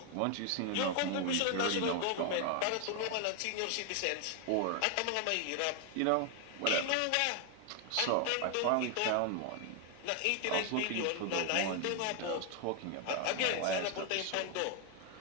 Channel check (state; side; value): different; both; correlation 0.01